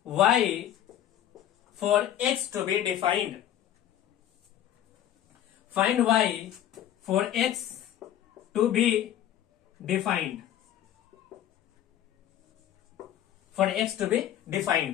y for x to be defined. Find y for x to be defined. For x to be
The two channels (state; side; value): quieter; right; 11.3 dB